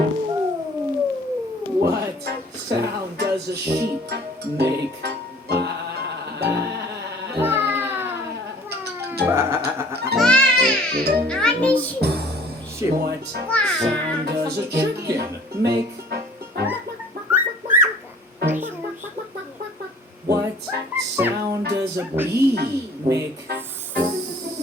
What sound does a sheep make? What sound does a chicken make? What sound does a bee make?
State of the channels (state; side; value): normal; both; correlation 0.51